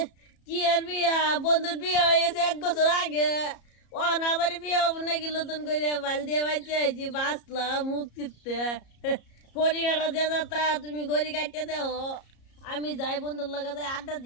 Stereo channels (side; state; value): right; late; 34 ms